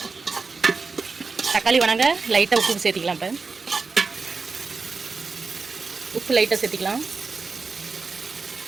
தக்காளி வணங்க லைட்டாக உப்பு சேர்த்திக்கலாம். இப்போ உப்பு லைட்டாக சேர்த்திக்கலாம்.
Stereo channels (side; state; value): left; quieter; 4.5 dB